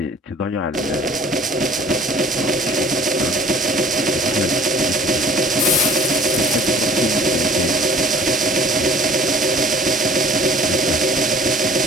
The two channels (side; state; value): both; normal; correlation 0.51